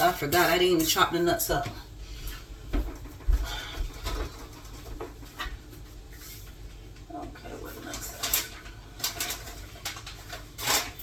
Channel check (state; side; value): identical; both; correlation 1.00